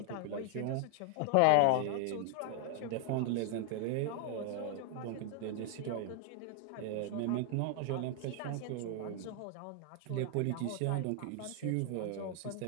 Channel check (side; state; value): both; different; correlation 0.00